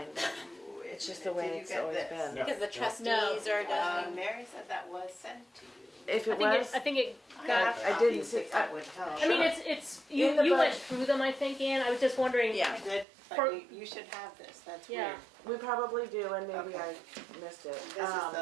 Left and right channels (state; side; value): drops out; left; at 13.1 s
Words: It's just the way it's always been. Because the trustees are done. Mary said that was sent to you. If it was, I think it got. I didn't see. That would help. I mean, it's you went through them, I think, Ann. I was just wondering. Yeah, but you should have this. That's weird. We probably do, and maybe I missed it. This is